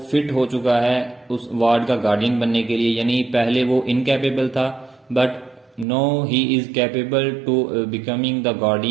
فٹ ہو چکا ہے اس وارڈ کا گارڈین بننے کے لیے، یعنی پہلے وہ انکیپیبل تھا but now he is capable to becoming the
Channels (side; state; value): left; drops out; at 5.9 s